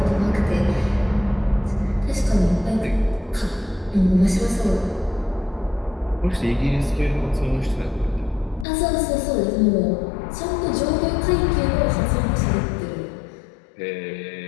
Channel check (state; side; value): drops out; right; at 8.7 s